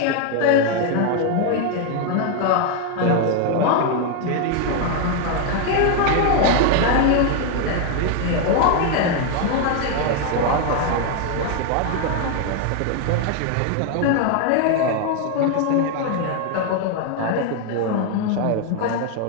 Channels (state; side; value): different; both; correlation 0.01